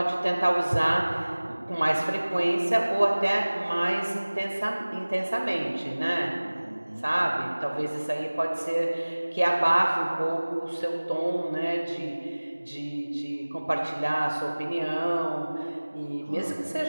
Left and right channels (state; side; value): inverted; both; correlation -1.00